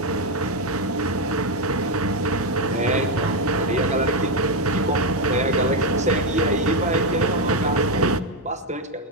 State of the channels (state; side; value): normal; both; correlation 0.05